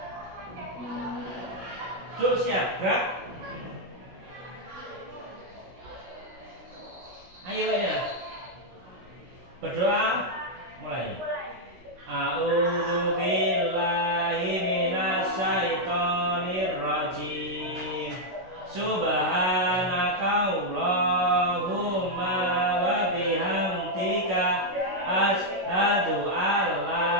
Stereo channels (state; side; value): late; left; 16 ms